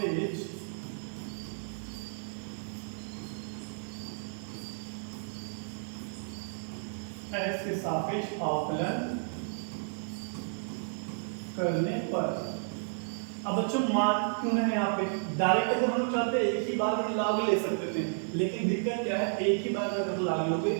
सापेक्ष अवकलन करने पर। अब बच्चों मान क्यों है यहाँ पे, डायरेक्ट अगर हम लोग चाहते हैं एक ही बार में लाग ले सकते थे, लेकिन दिक्कत क्या है, एक ही बार में अगर लाग लोगे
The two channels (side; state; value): left; silent; 56 dB below the other